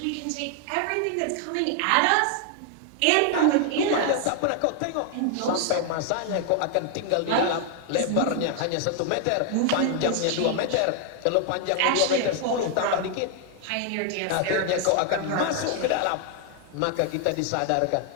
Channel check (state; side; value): different; both; correlation 0.00